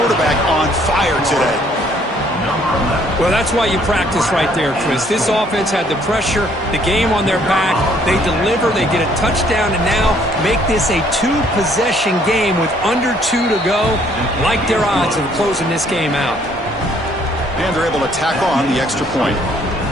on fire today. Well, that's why you practice right there, Chris. This offense had the pressure, the game on their back. They deliver, they get a touchdown, and now make this a 2-possession game with under 2 to go. Like their odds of closing this game out. And they're able to tack on the extra point.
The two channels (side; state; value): both; normal; correlation 0.63